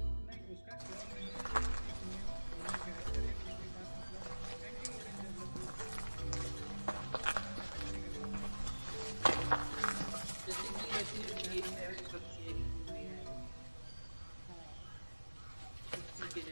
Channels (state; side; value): inverted; both; correlation -1.00